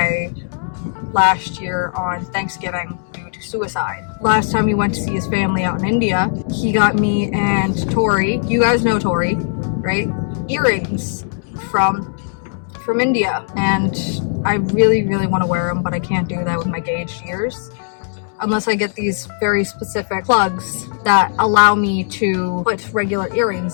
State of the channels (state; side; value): silent; right; 67 dB below the other